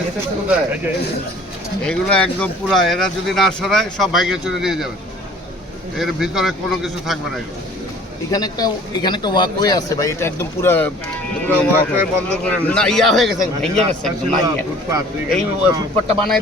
এগুলো একদম পুরা, এরা যদি না সরায় সব ভাইকে চলে নিয়ে যাবে, এর ভিতরে কোনো কিছু থাকবে না। এগুলো এখানে একটা ওয়াকওয়ে আছে ভাই, এটা একদম পুরো ওয়াকওয়ে বন্ধ করে না ইয়া হয়ে গেছে, ভেঙে গেছে একদম। এই ফুটপাতটা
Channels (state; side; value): normal; both; correlation 0.50